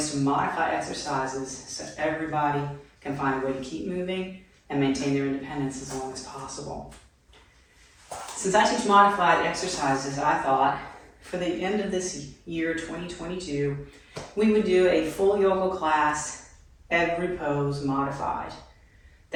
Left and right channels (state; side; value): identical; both; correlation 1.00